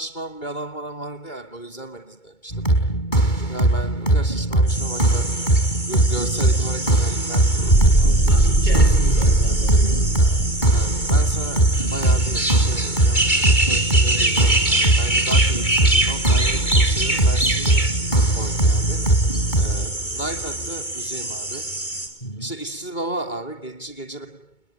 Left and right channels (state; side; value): late; right; 2.2 ms